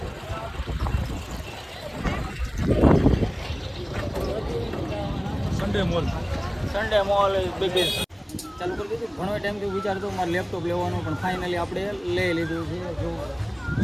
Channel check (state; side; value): identical; both; correlation 1.00